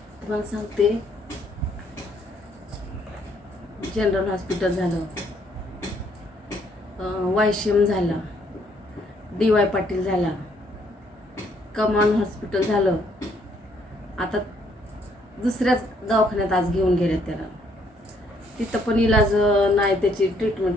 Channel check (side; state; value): both; normal; correlation 0.68